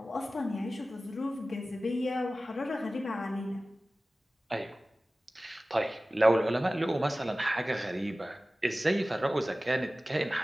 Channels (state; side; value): normal; both; correlation 0.96